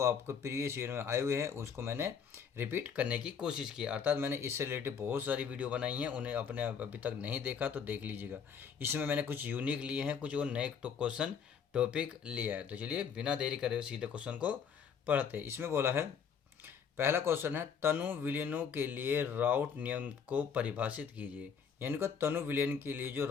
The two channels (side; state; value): right; quieter; 6.9 dB